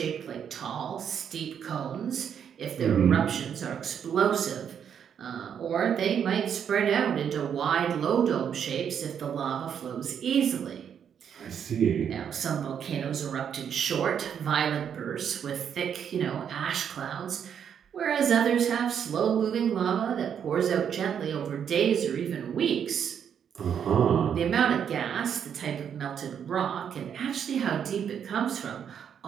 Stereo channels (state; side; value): quieter; left; 8.2 dB